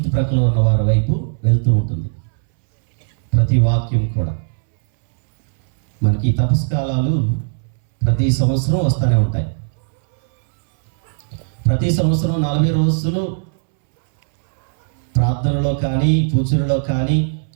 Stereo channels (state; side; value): silent; left; 67 dB below the other